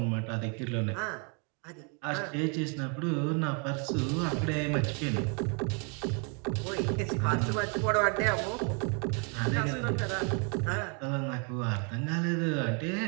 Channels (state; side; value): quieter; left; 36.7 dB